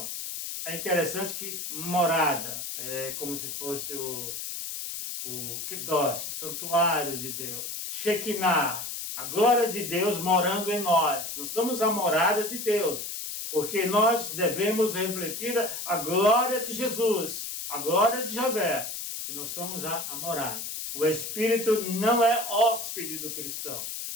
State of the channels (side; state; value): left; noise; hiss, 6 dB below the sound